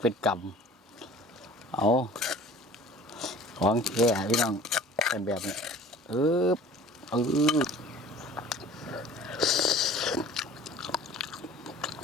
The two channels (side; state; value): both; normal; correlation 0.47